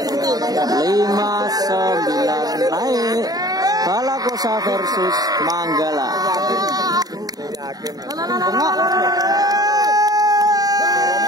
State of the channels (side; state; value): left; late; 0.18 ms